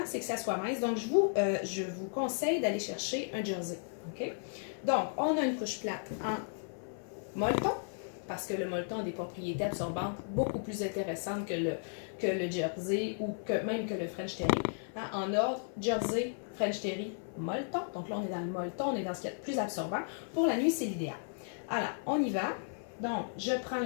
c'est que ça soit mince. Donc, je vous conseille d'aller chercher un jersey. OK? Donc, on a une couche plate en molleton, parce que le molleton a des propriétés absorbantes beaucoup plus intéressantes que le jersey ou même que le French Terry. Hein? En ordre, jersey, French Terry, molleton. Donc là, on est dans le molleton, on est dans ce qui est le plus absorbant. Pour la nuit, c'est l'idéal. Alors, on y va. Donc, je prends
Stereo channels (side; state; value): right; silent; 55 dB below the other